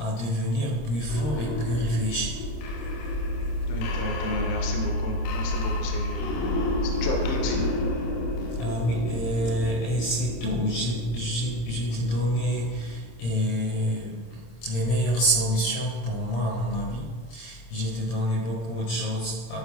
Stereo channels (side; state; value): right; late; 26 ms